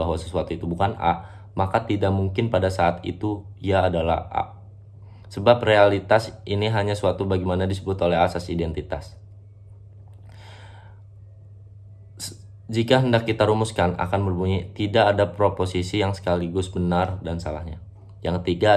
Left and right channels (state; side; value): identical; both; correlation 1.00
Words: sesuatu itu bukan A, maka tidak mungkin pada saat itu ia adalah A. Sebab realitas ini hanya suatu bagaimana disebut oleh asas identitas. Jika hendak kita rumuskan, akan berbunyi tidak ada proposisi yang sekaligus benar dan salahnya. Yang ketiga,